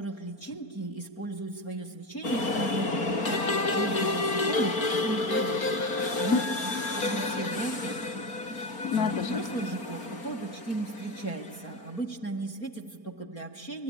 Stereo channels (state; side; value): late; right; 4.4 ms